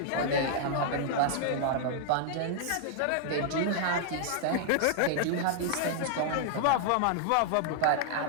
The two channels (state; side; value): different; both; correlation -0.01